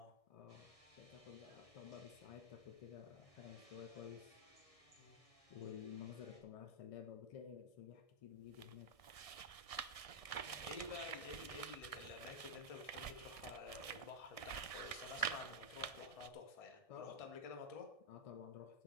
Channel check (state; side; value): late; right; 1.6 ms